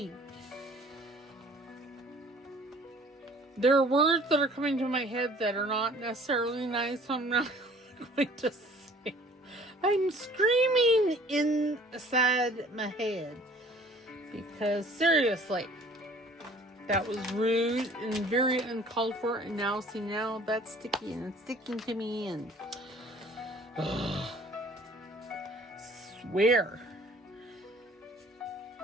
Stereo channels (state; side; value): normal; both; correlation 0.52